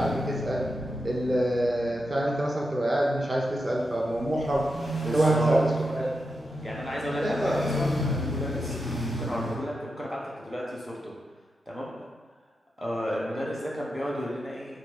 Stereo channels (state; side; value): normal; both; correlation 0.87